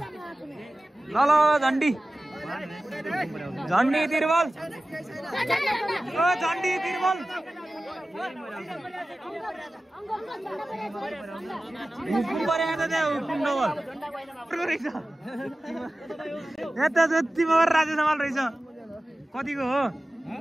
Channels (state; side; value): normal; both; correlation 0.96